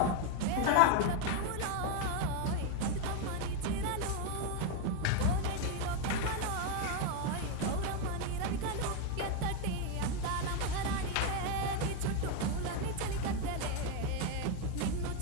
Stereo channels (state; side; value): different; both; correlation 0.02